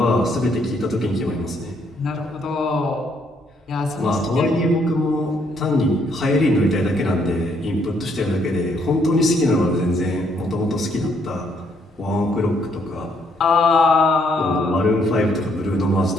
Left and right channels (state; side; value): normal; both; correlation 0.70